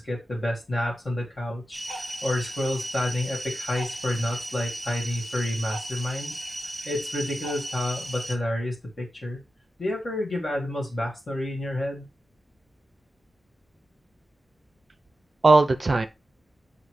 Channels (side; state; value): both; normal; correlation 0.91